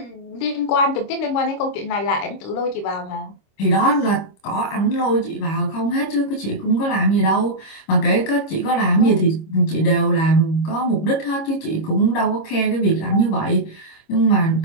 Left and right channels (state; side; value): late; right; 26 ms